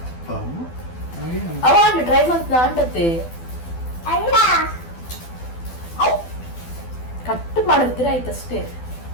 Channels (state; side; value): late; right; 12 ms